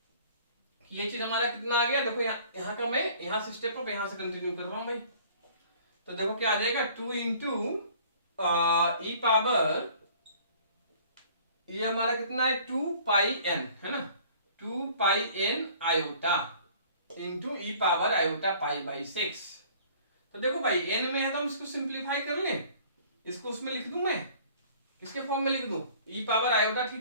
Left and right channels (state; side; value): inverted; both; correlation -0.52